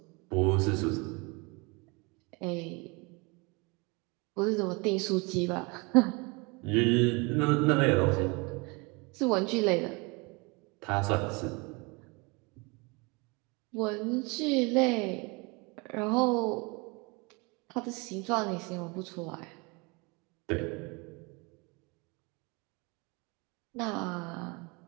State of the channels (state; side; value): quieter; left; 28.3 dB